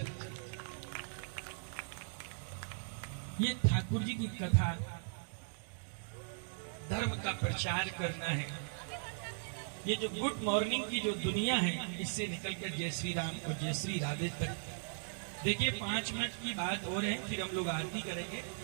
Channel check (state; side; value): silent; left; digital silence